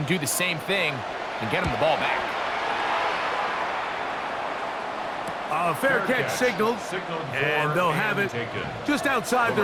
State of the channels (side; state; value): both; identical; correlation 1.00